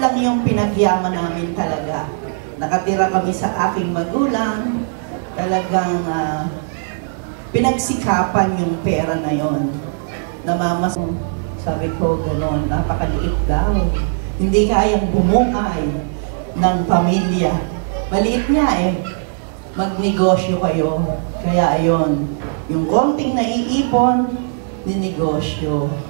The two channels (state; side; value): silent; left; digital silence